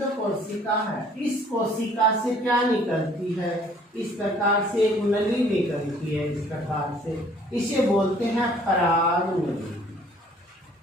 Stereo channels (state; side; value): normal; both; correlation 0.58